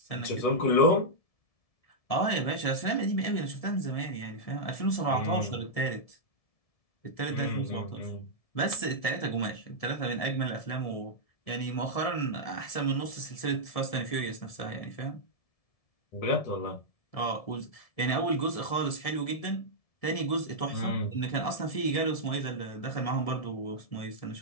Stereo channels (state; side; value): late; right; 1.7 ms